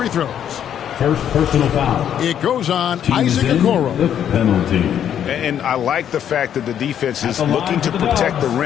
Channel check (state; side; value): quieter; right; 9.5 dB